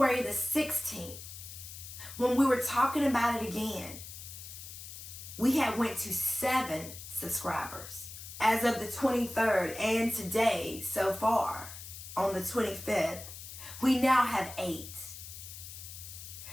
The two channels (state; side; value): noise; left; hiss, 12 dB below the sound